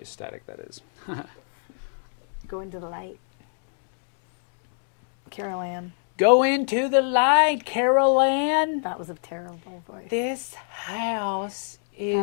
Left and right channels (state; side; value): silent; right; digital silence